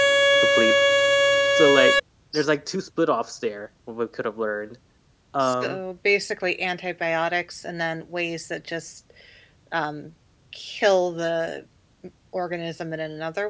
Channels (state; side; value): identical; both; correlation 1.00